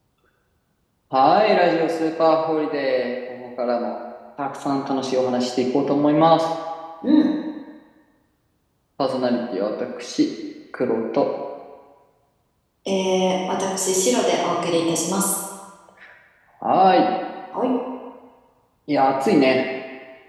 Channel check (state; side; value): identical; both; correlation 1.00